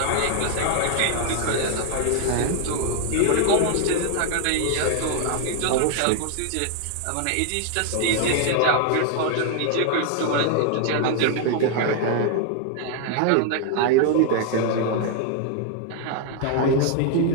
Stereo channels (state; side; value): different; both; correlation 0.00